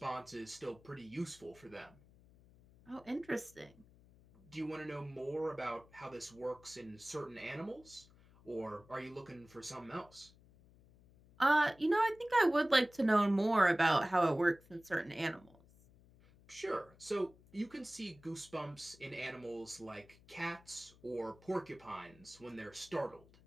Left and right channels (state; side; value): noise; left; hum, 26 dB below the sound